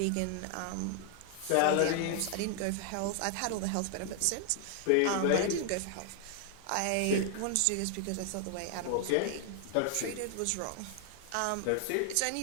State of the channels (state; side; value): different; both; correlation 0.00